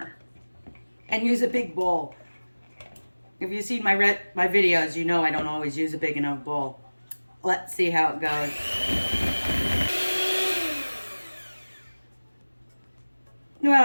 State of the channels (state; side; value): inverted; both; correlation -1.00